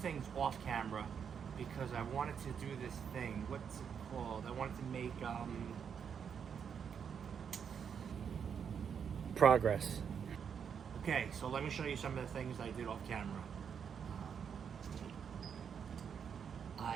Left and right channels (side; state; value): left; quieter; 7.3 dB